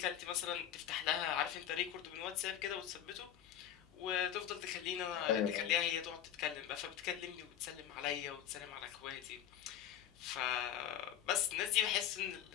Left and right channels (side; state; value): right; quieter; 10.4 dB